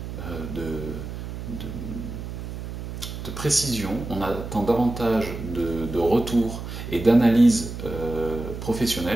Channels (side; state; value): right; noise; hum, 8 dB below the sound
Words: de précision, on attend davantage de retour et d'analyse